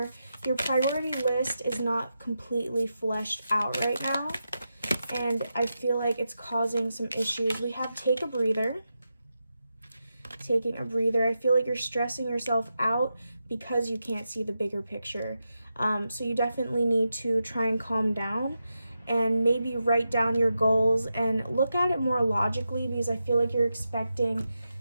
Your priority list is not completely fleshed out right now, and I feel like it's causing some issues. We have take a breather. Taking a breather. I feel like you're stressing yourself out because you can't see the bigger picture. So you definitely need to try and calm down and maybe write down your goals and look at it more logically, because I feel like you're expecting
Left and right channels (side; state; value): both; inverted; correlation -0.89